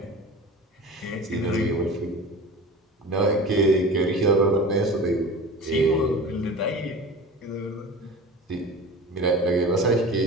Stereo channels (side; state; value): both; normal; correlation 0.36